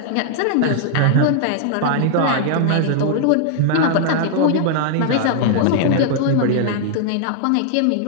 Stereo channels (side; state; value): both; different; correlation -0.01